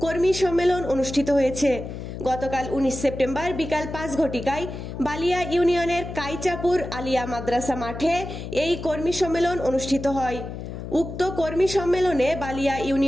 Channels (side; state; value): left; noise; hum, 9 dB below the sound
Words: কর্মী সম্মেলন অনুষ্ঠিত হয়েছে। গতকাল ১৯ সেপ্টেম্বর বিকাল ৫ ঘটিকায় বালিয়া ইউনিয়নের কাইচাপুর আলিয়া মাদ্রাসা মাঠে এই কর্মী সম্মেলন অনুষ্ঠিত হয়। উক্ত কর্মী সম্মেলনে বালিয়া